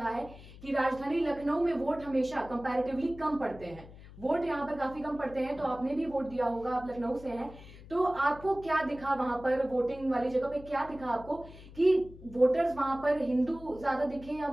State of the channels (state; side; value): noise; left; hum, 18 dB below the sound